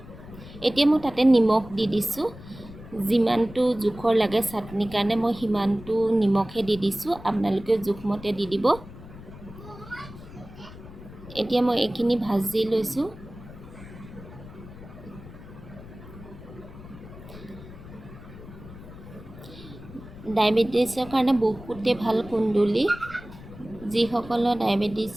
এতিয়া মই তাতে নিমখ দি দিছোঁ। যিমানটো জোখৰ লাগে চাটনিৰ কাৰণে মই সিমানটো নিমখে দি দিছোঁ। আপোনালোকে জোখমতে দি দিব। এতিয়া মই এইখিনি ভাজি লৈছোঁ। ডায়েবেটিছৰ কাৰণে বহুতে ভাল কুন্দুলি। যিসকলৰ ডায়েবেটিছ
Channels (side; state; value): left; noise; rumble, 16 dB below the sound